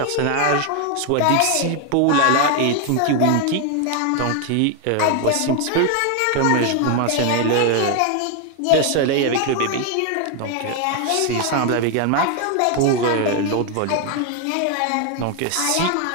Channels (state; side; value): different; both; correlation 0.01